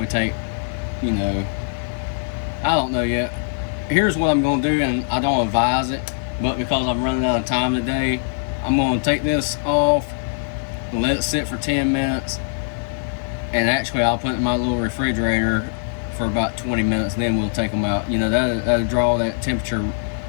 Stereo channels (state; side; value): silent; right; digital silence